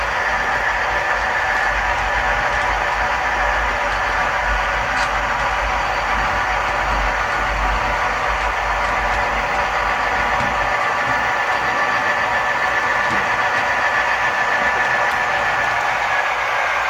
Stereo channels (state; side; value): identical; both; correlation 1.00